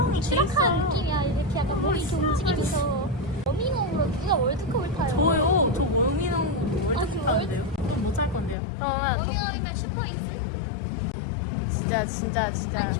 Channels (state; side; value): drops out; right; at 8.6 s